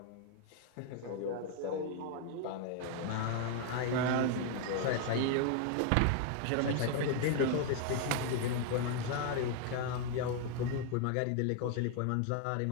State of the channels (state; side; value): different; both; correlation 0.00